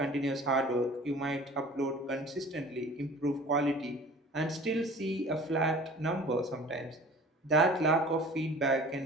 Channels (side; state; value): both; normal; correlation 0.45